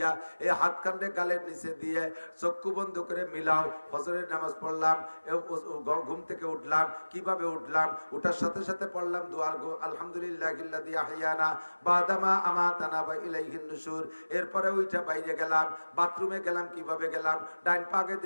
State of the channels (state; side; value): inverted; both; correlation -1.00